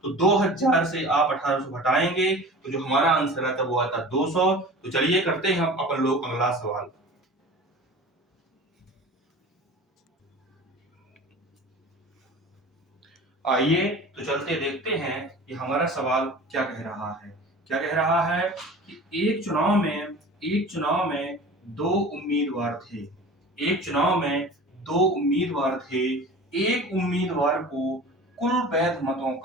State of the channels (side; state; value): both; normal; correlation 0.39